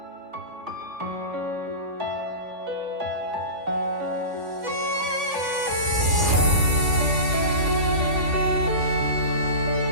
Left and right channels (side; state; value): left; late; 3.5 ms